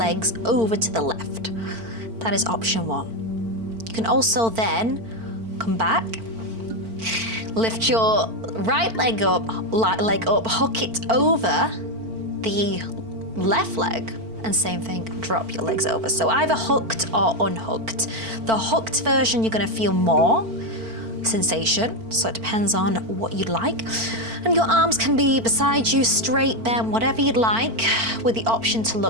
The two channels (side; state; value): left; late; 4.5 ms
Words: over to the left. That is option one. You can also then come back, lift your right leg up, hook it over the left leg, and same thing, drop your legs over. So either hooked or unhooked. The hooked version, you're gonna feel more sensation, so it depends on what you'd like. And your arms can be beside you, straight, bent, whatever you'd like, with the option to